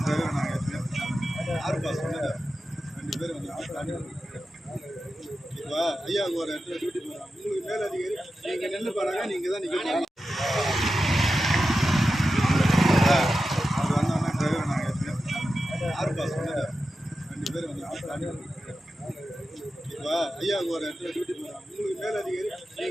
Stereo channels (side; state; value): both; normal; correlation 0.91